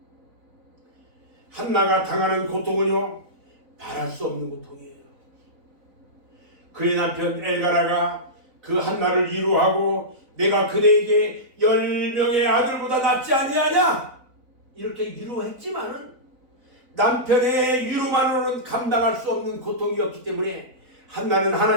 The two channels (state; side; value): late; left; 4.0 ms